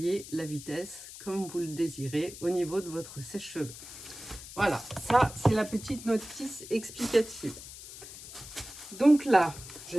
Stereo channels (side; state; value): left; noise; hiss, 14 dB below the sound